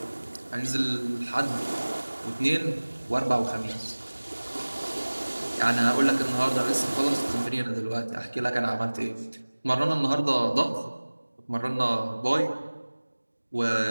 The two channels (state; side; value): inverted; both; correlation -1.00